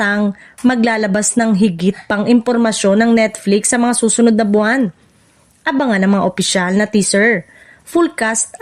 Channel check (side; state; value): both; identical; correlation 1.00